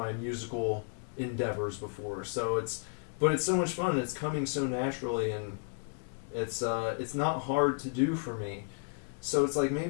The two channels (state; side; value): quieter; right; 39.7 dB